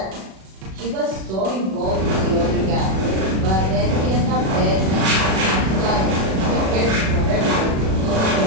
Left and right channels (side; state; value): left; late; 37 ms